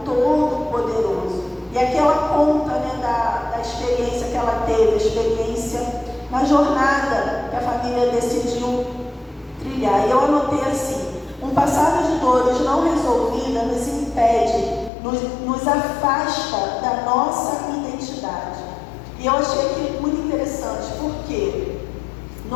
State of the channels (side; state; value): right; drops out; at 14.9 s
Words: Todo-Poderoso. E aqui ela conta, da experiência que ela teve, a experiência na jornada que a família decidiu trilhar. E eu anotei assim: um passado de dores não resolvida nos impede, nos afasta da nossa identidade. E eu achei aquilo muito interessante, porque